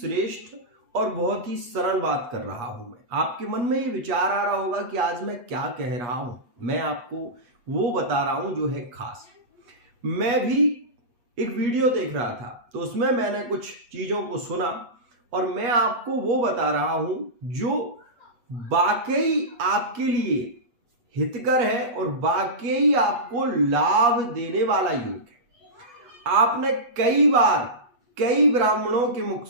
और बहुत ही सरल बात कर रहा हूं मैं। आपके मन में ये विचार आ रहा होगा कि आज मैं क्या कह रहा हूं। मैं आपको वो बता रहा हूं जो है खास। मैं भी एक वीडियो देख रहा था तो उसमें मैंने कुछ चीजों को सुना और मैं आपको वो बता रहा हूं जो वाकई आपके लिए हितकर है और वाकई आपको लाभ देने वाला योग है। आपने कई बार कई ब्राह्मणों के मुख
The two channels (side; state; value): left; late; 8.2 ms